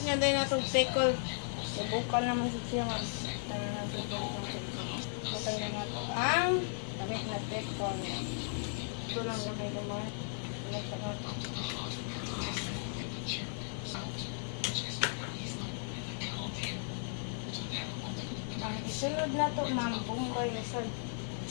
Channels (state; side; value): silent; right; 54 dB below the other